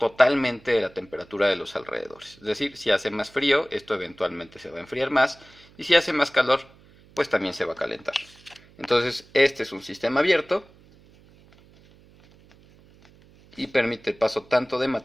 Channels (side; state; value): right; noise; hum, 27 dB below the sound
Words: de la temperatura de los alrededores. Es decir, si hace más frío, esto eventualmente se va a enfriar más, y si hace más calor, pues también se va a calentar. Entonces, este es un sistema abierto y permite el paso tanto de